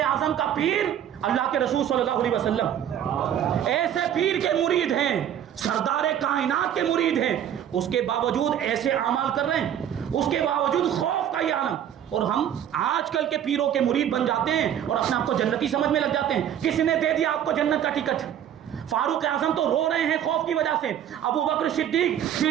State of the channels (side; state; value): left; quieter; 10.1 dB